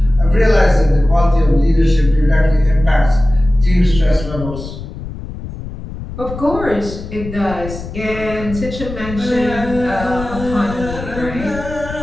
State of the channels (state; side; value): noise; left; rumble, 10 dB below the sound